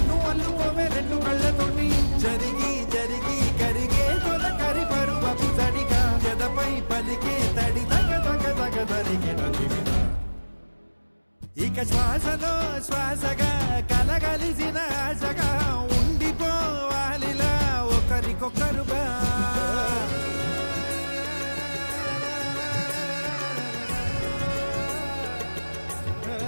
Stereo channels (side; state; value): both; inverted; correlation -1.00